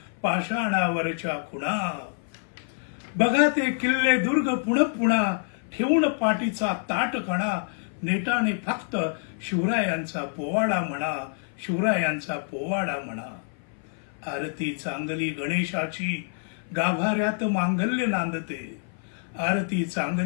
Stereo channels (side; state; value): right; silent; 56 dB below the other